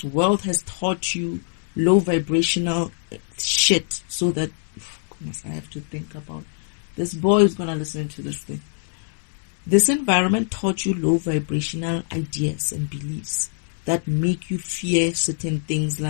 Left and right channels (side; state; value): right; silent; digital silence